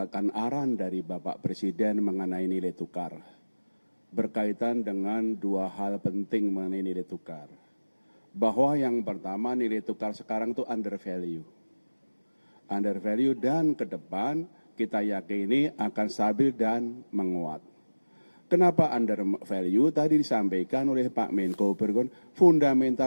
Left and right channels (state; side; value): inverted; both; correlation -1.00